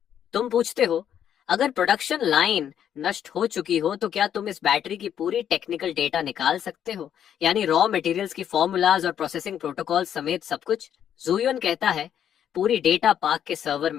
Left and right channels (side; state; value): right; quieter; 9.5 dB